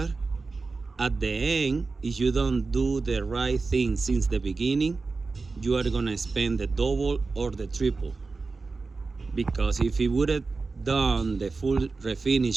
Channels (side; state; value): left; quieter; 4.0 dB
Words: at the end, if you don't do the right thing since the beginning, you are gonna spend the double or the triple. Because if he would have done the full